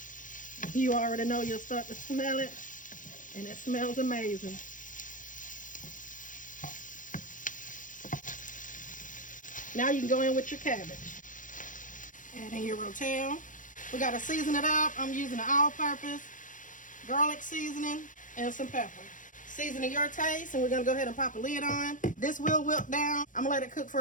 You already know you'll start to smell it, and it smells amazing. Now you can go in with your cabbage. Add in your Rotel. We got to season it up. I'm using an all-purpose garlic seasoning and some pepper. Seasoning your taste, and we're gonna go ahead and pop a lid on. This will wilt down. I'm gonna let it cook for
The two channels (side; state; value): right; late; 0.38 ms